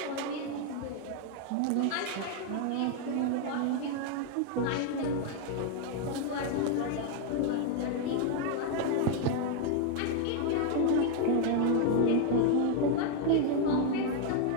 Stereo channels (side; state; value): both; different; correlation 0.00